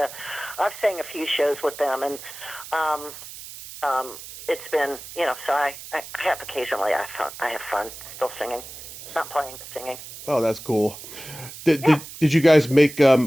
sang a few shows with them, and it's been so I have occasionally I have fun still singing, not playing but singing. Oh, that's cool. Did Yeah. did, did you guys make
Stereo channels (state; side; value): noise; right; hiss, 14 dB below the sound